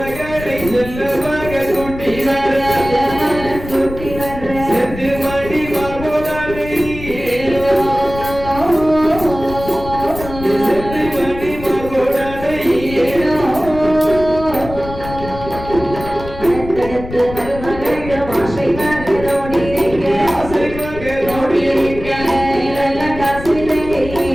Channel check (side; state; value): left; noise; rumble, 11 dB below the sound